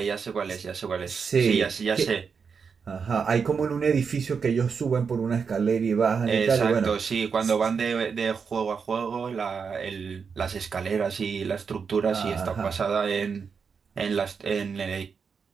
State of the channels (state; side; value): quieter; left; 5.9 dB